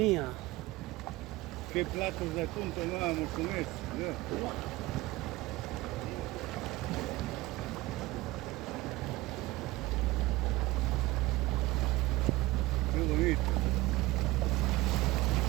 ¿Qué platos de atún tomábamos con eso? ¿No? Qué bonito.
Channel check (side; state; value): left; quieter; 19.9 dB